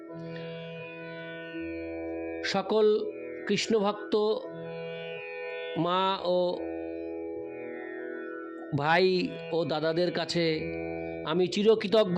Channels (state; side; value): identical; both; correlation 1.00